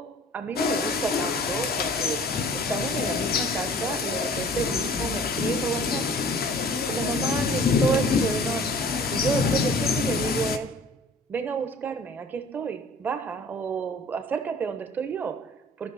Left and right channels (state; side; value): normal; both; correlation 0.48